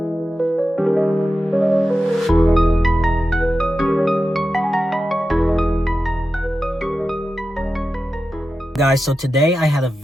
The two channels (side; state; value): both; normal; correlation 0.92